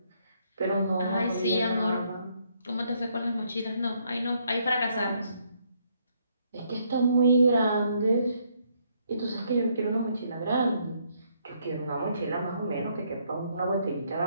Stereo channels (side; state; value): both; inverted; correlation -0.71